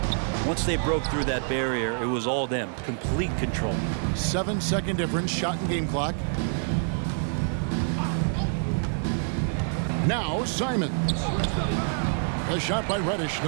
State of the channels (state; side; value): silent; left; digital silence